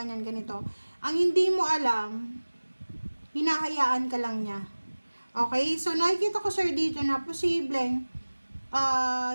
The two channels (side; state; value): both; inverted; correlation -1.00